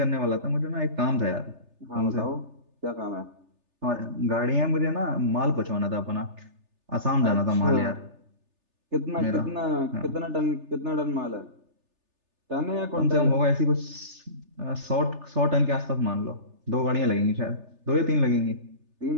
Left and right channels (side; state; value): left; late; 3.3 ms